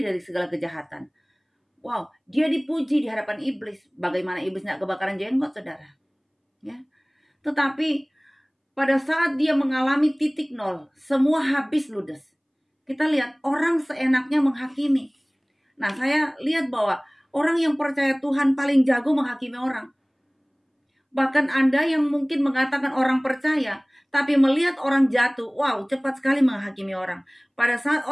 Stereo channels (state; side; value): identical; both; correlation 1.00